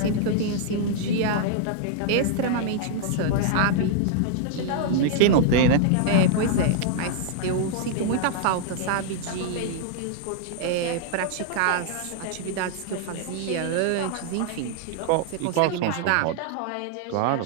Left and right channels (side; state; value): both; different; correlation -0.01